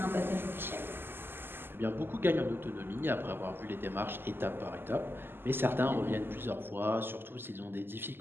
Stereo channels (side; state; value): left; late; 0.10 ms